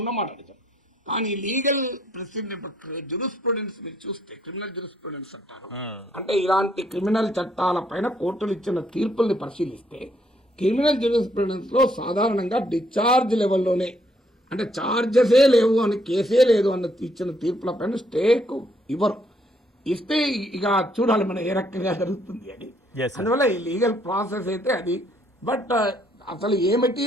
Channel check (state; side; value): normal; both; correlation 0.70